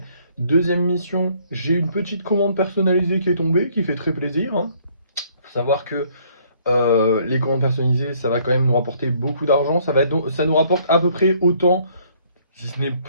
Deuxième mission, j'ai une petite commande personnalisée qui est tombée, qui fait très plaisir, hein. Faut savoir que les commandes personnalisées, ça va quand même nous rapporter beaucoup d'argent. Ça nous rapporte à peu près autant, si ce n'est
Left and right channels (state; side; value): inverted; both; correlation -0.63